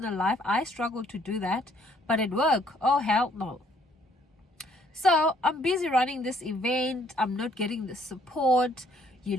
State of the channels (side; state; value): both; normal; correlation 0.64